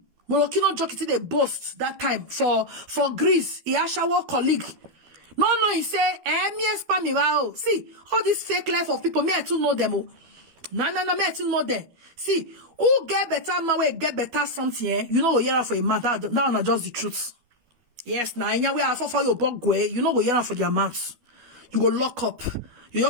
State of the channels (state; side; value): late; left; 12 ms